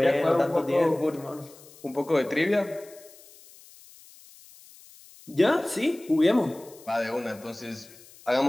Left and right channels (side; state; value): left; noise; hiss, 23 dB below the sound